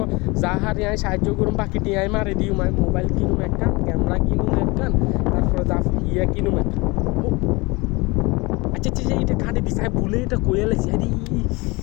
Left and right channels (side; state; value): right; quieter; 24.8 dB